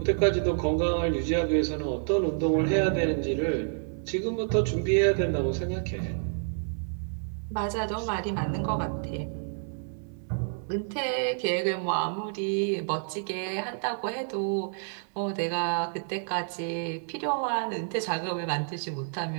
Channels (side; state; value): left; silent; 59 dB below the other